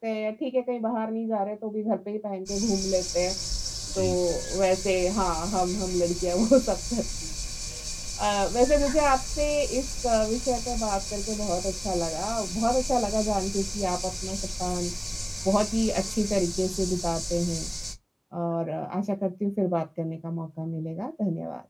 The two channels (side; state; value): both; identical; correlation 1.00